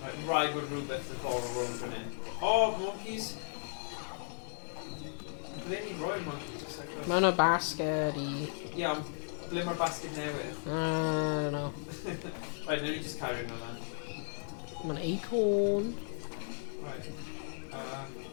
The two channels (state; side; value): silent; right; digital silence